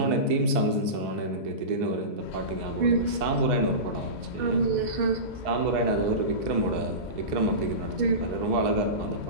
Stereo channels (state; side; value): late; left; 2.0 ms